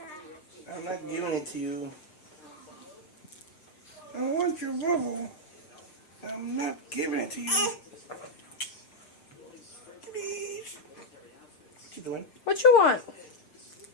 I'm not giving it to you. I want your bubble. I'm not giving it to you. Please. What you doing? What you want?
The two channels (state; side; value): late; right; 6.3 ms